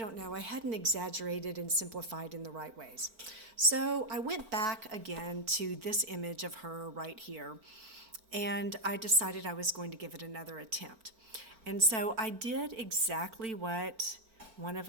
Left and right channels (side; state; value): left; late; 4.4 ms